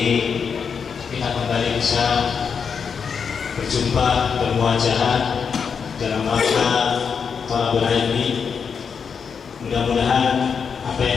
kita kembali bisa berjumpa, bermuajahat dalam rangka thalabul ilmi. Mudah-mudahan apa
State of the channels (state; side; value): quieter; right; 6.3 dB